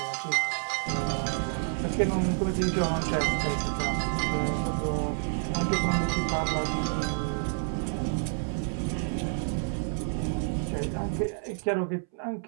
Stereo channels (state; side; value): silent; left; 59 dB below the other